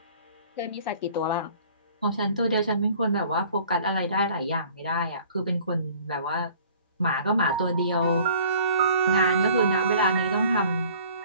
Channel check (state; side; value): inverted; both; correlation -0.52